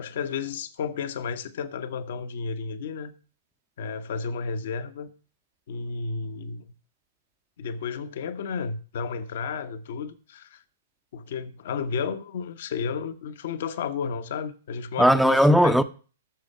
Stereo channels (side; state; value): both; normal; correlation 0.44